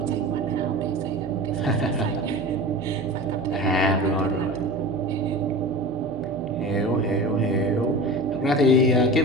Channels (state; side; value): normal; both; correlation 0.33